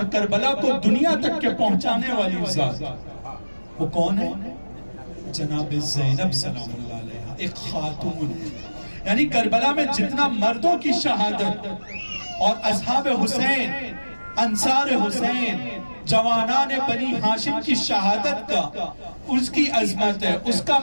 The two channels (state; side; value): inverted; both; correlation -1.00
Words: کربلا کو دنیا تک کے پہنچانے والی ذات، وہ کون ہے؟ جناب زینب سلام اللہ علیہ، ایک خاتون ہے۔ یعنی کربلا میں جتنا مردوں کی شہادت اور اصحاب حسین، انصار حسین، جوانان بنی ہاشم کی شہادت کا، اس کی عظمت ہے، اس کا